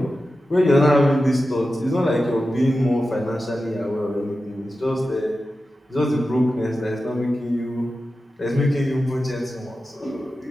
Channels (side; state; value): both; normal; correlation 0.92